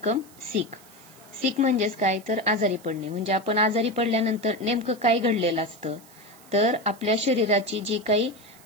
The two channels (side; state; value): right; noise; hiss, 24 dB below the sound